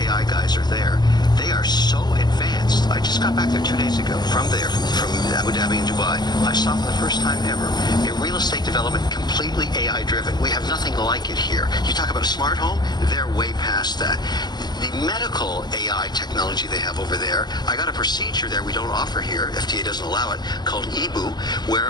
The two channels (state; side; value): late; right; 0.21 ms